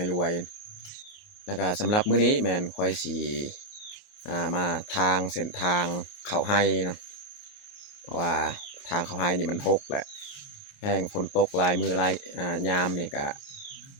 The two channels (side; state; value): right; late; 28 ms